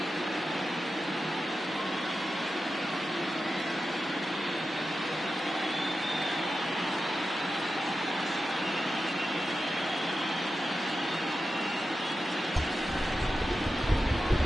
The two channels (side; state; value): both; normal; correlation 0.91